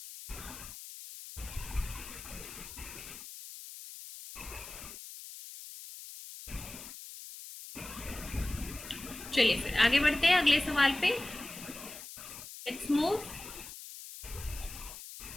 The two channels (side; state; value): left; noise; hiss, 12 dB below the sound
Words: चलिए फिर आगे बढ़ते हैं अगले सवाल पे। Let's move.